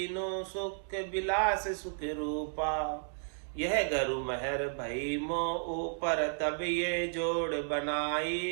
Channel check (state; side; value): silent; left; digital silence